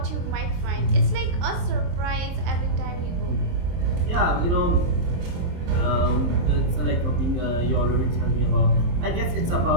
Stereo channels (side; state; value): left; late; 23 ms